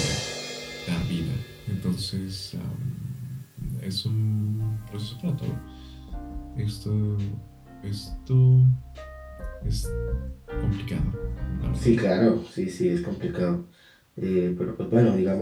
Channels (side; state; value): both; identical; correlation 1.00